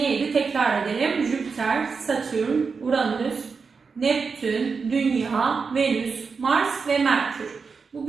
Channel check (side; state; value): left; quieter; 5.1 dB